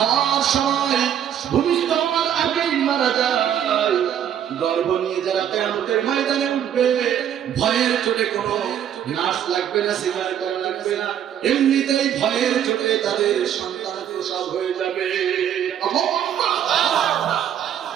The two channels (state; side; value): quieter; left; 9.8 dB